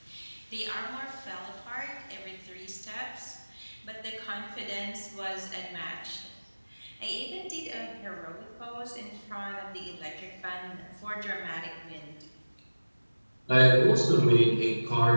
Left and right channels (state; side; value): inverted; both; correlation -1.00